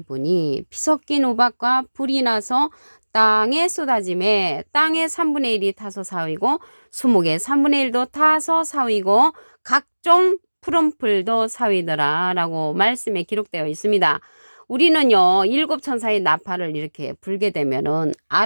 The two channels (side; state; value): both; inverted; correlation -1.00